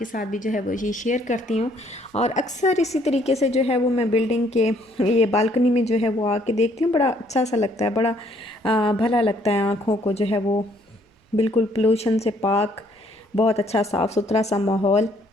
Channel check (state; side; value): normal; both; correlation 0.65